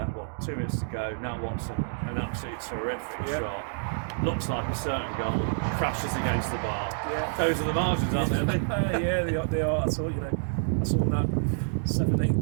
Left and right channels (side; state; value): left; silent; digital silence